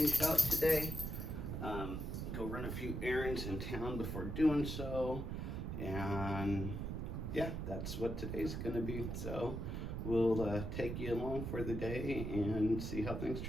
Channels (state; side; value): noise; right; rumble, 4 dB below the sound